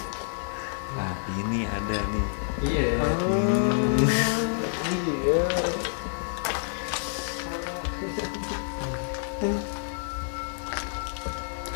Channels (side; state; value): right; silent; digital silence